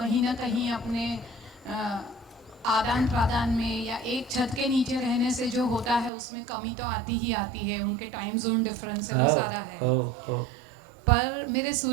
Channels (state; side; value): drops out; left; at 6.1 s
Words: ना कहीं अपने आदान प्रदान में या एक छत के नीचे रहने से जो होता है उसमें कमी तो आती ही आती है। उनके टाइम जोन डिफरेंस है, सारा है। पर मेरे